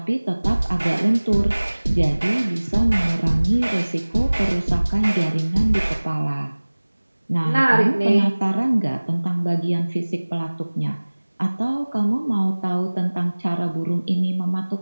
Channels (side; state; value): both; inverted; correlation -1.00